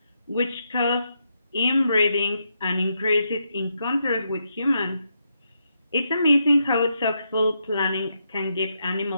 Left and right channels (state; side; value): inverted; both; correlation -0.81